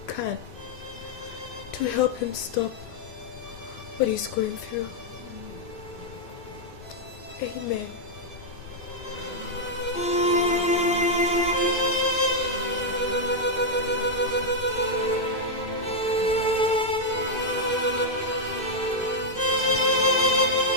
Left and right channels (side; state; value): right; late; 2.5 ms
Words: can to help him stop what he's going through. Amen.